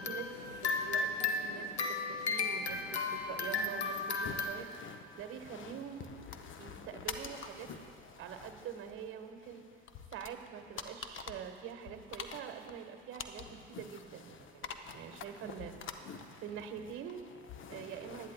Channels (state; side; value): normal; both; correlation 0.13